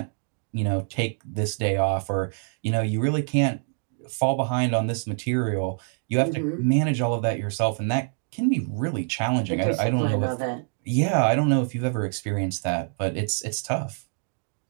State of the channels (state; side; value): silent; left; 57 dB below the other